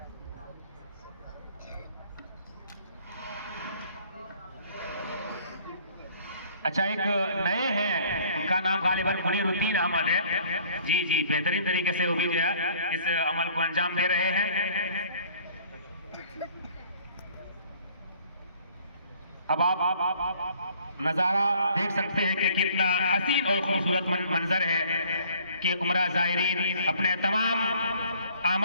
अच्छा, एक नए हैं, उनका नाम गालिबन मुनीरुद्दीन अहमद है। जी, बेहतरीन तरीके से वो भी जो है इस अमल को अंजाम दे रहे हैं। अब आप नज़ारा देख सकते हैं कि कितना हसीन और खूबसूरत मंजर है कि उम्रा ज़ायरीन अपने तमाम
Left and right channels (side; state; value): both; inverted; correlation -0.56